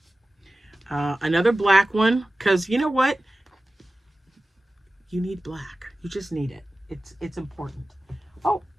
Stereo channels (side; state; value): both; normal; correlation 0.96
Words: Another black one, because you know what? You need black. You just need it. It's important. Oh,